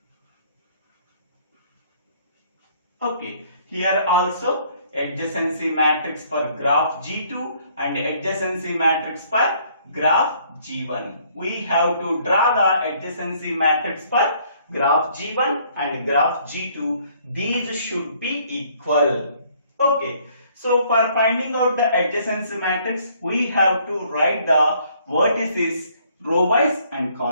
Okay, here also adjacency matrix for graph G2 and adjacency matrix for graph G1. We have to draw the adjacency matrix for graph G1 and graph G2. These should be equal. Okay, so for finding out the adjacency matrix, we have to write the vertices row wise and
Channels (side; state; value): both; inverted; correlation -0.63